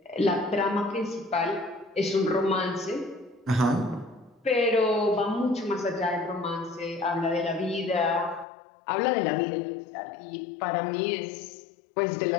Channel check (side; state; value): right; drops out; at 8.5 s